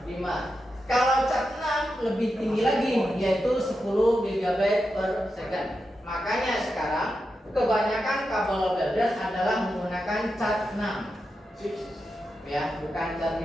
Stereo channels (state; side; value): normal; both; correlation 0.88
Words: 5. Kalau cat 6 lebih tinggi lagi, yaitu 10 GB per second. Makanya sekarang kebanyakan kabel builder adalah menggunakan cat 6. Ya, bukan cat